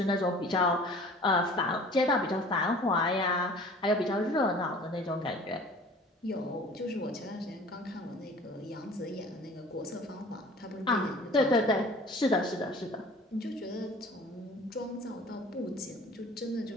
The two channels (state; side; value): normal; both; correlation 0.46